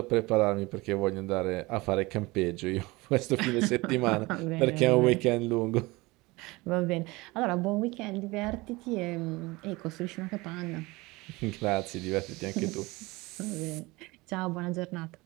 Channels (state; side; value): quieter; left; 22.5 dB